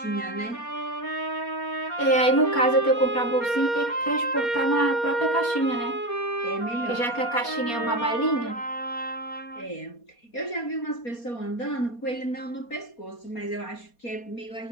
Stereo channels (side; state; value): right; late; 4.2 ms